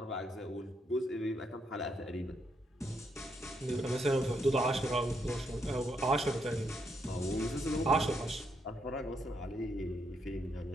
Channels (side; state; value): both; normal; correlation 0.77